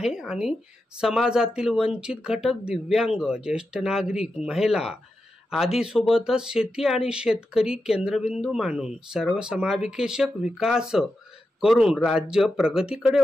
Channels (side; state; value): both; normal; correlation 0.89